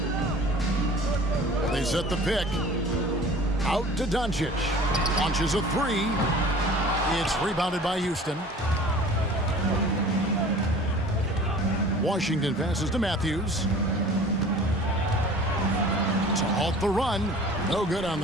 They set the pick. Out to Doncic. Launches a 3. It's rebounded by Houston. Washington passes to Matthews. To halt the run. No good on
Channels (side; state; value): both; normal; correlation 0.44